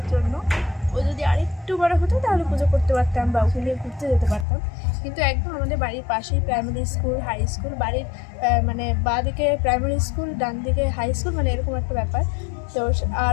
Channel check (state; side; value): drops out; right; at 4.5 s